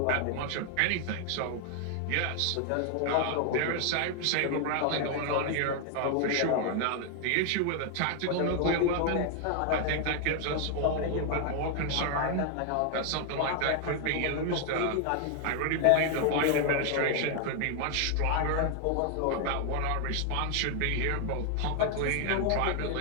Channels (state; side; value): different; both; correlation 0.00